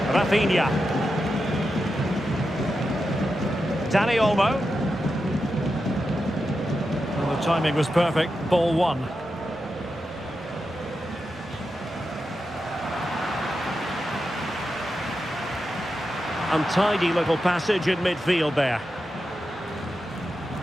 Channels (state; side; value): normal; both; correlation 0.89